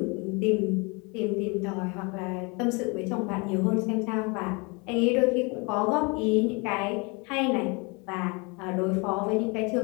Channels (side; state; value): right; quieter; 30.0 dB